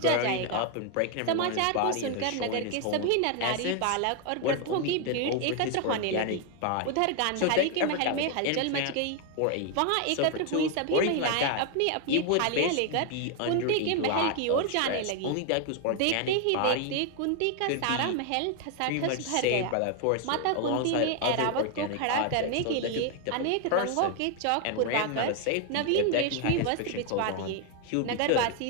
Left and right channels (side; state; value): both; different; correlation 0.01